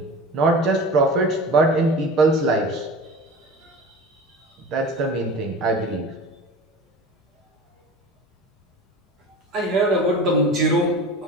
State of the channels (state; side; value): normal; both; correlation 0.35